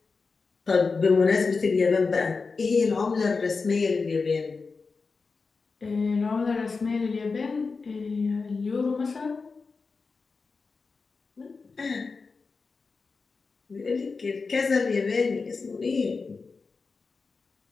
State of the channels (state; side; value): quieter; right; 4.5 dB